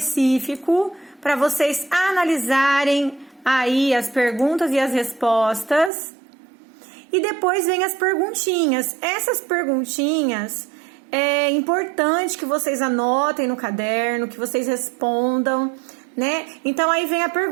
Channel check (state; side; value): drops out; left; at 5.9 s